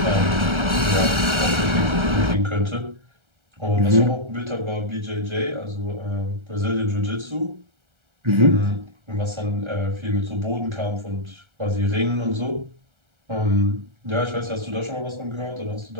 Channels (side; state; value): left; late; 1.3 ms